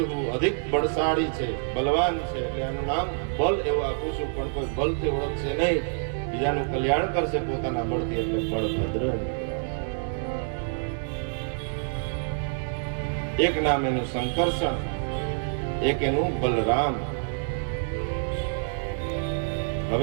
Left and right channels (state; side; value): silent; left; digital silence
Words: અધિક બળશાળી છે, બલવાન છે, એટલે એનું નામ બલ એવું આપું છું. પણ કોઈ બલથી ઓળખશે નહીં, બીજાનું કલ્યાણ કરશે પોતાના બળથી, એટલે બળભદ્ર. એક નામ એનું સંકર્ષણ, એક એનું બલરામ.